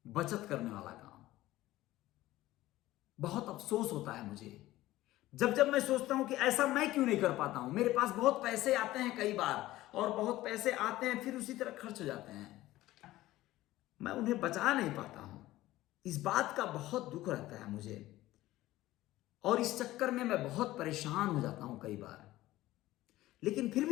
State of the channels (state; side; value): quieter; right; 16.3 dB